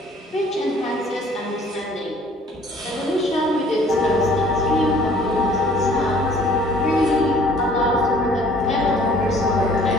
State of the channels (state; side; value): normal; both; correlation 0.55